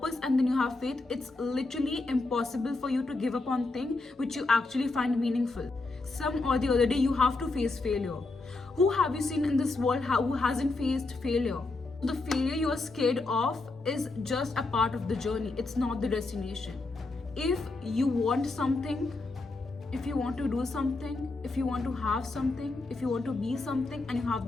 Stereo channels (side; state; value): right; quieter; 3.3 dB